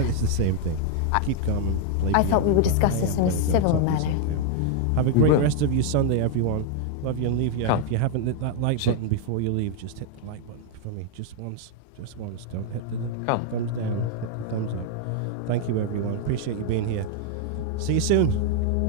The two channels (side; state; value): both; different; correlation 0.00